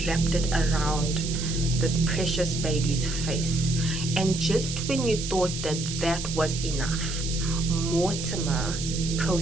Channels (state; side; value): noise; right; hiss, 7 dB below the sound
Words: wrapped it around this precious baby's face. And just when you thought that that was enough, Mortimer